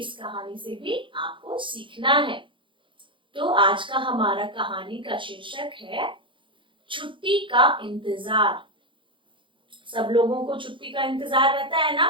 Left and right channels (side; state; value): left; late; 0.24 ms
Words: कहानी से भी आपको सीखना है। तो आज का हमारा कहानी का शीर्षक है छुट्टी का इंतजार। सब लोगों को छुट्टी का इंतजार रहता है ना